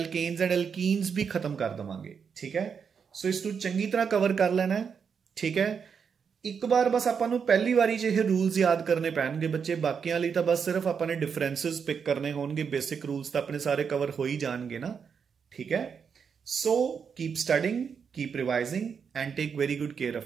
एंड एल्कीन्स भी खत्म कर देवांगे, ठीक है। सो इसनूं चंगी तरह कवर कर लेना है, ठीक है। ਇੱਕ ਵਾਰ ਬਸ ਆਪਾਂ ਨੂੰ ਪਹਿਲੀ ਵਾਰੀ 'ਚ ਇਹ ਰੂਲਸ ਯਾਦ ਕਰਨੇ ਪੈਣਗੇ ਬੱਚੇ, ਬਾਕੀਆਂ ਲਈ ਤਾਂ ਬਸ ਸਿਰਫ ਆਪਾਂ ਨੇ ਡਿਫਰੈਂਸਸ ਪਿਕ ਕਰਨੇ ਹੋਣਗੇ, ਬੇਸਿਕ ਰੂਲਸ ਤਾਂ ਆਪਣੇ ਸਾਰੇ ਕਵਰ ਹੋ ਹੀ ਜਾਣਗੇ ਨਾ, ਠੀਕ ਹੈ। So keep studying, keep revising and take very good care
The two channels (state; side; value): quieter; left; 6.5 dB